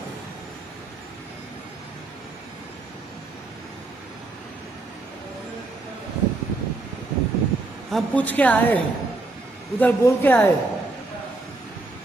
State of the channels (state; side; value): quieter; left; 3.1 dB